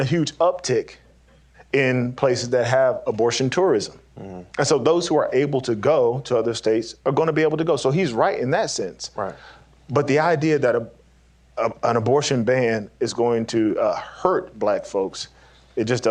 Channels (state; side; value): identical; both; correlation 1.00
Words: a huge uptick in places that have abortion tourism. Mm-hmm. And so those who are able to go to other states are going to be able to go. So he's right in that sense. Right. But the idea that an abortion ban is going to hurt black folks, it just